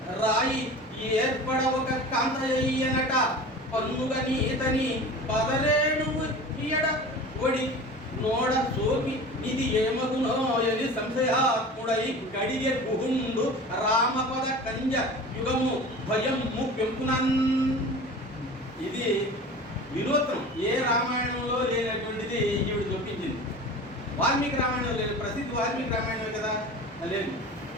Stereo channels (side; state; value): both; normal; correlation 0.37